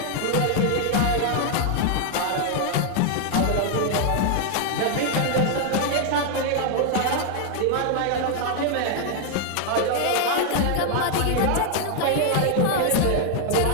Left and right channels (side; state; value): both; different; correlation 0.00